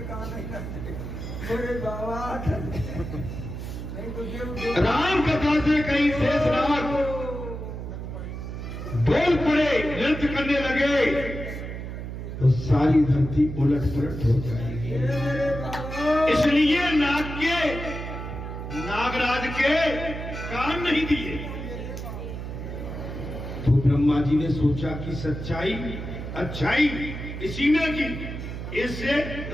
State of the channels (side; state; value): right; noise; hum, 7 dB below the sound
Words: राम कथा से कहीं शेषनाग डोल पड़े, नृत्य करने लगे तो सारी धरती उलट पुलट हो जाएगी। इसलिए नागराज के कान नहीं दिए। तो ब्रह्मा जी ने सोचा कि सच्चाई अच्छाई इसी में की, इससे